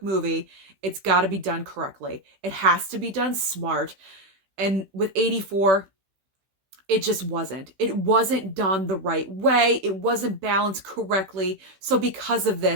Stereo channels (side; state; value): left; late; 15 ms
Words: movie, it's got to be done correctly. It has to be done smart. And with 84, it just wasn't. It wasn't done the right way. It wasn't balanced correctly. So because of